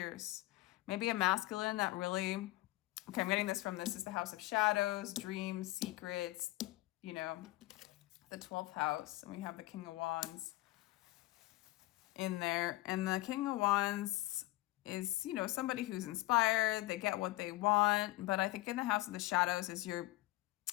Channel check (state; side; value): quieter; right; 19.0 dB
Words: Maybe a masculine that really, okay, I'm getting this from, this is the house of shadows, dreams, secrets, you know, the 12th house. And we have the King of Wands in there. And the King of Wands is, you know, somebody who's inspired. They get what they want. But I think in the house of the shadows is